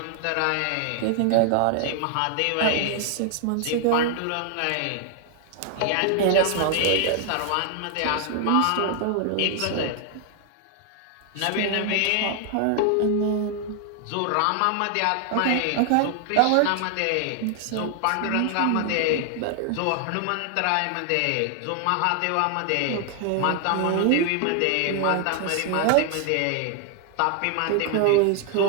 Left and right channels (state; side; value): different; both; correlation 0.00